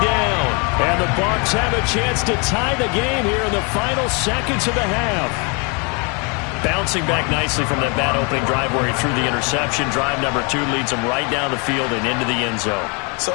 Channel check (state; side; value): quieter; right; 33.3 dB